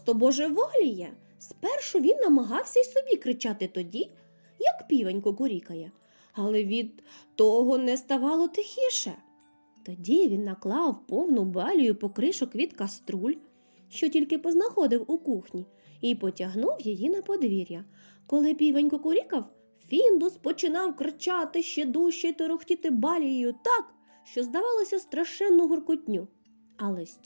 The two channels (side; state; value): both; inverted; correlation -1.00